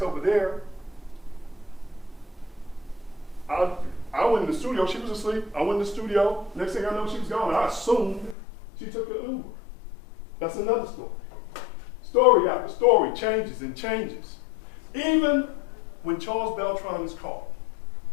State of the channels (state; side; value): drops out; right; at 8.3 s